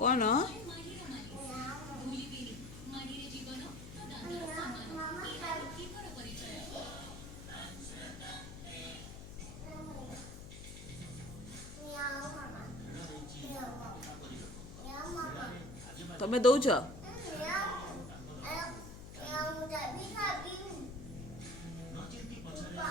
କ'ଣ? ତମେ ଦଉଛ?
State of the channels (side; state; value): left; noise; hum, 12 dB below the sound